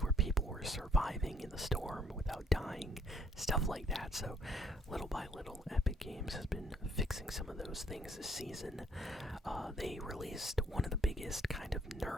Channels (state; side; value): normal; both; correlation 0.66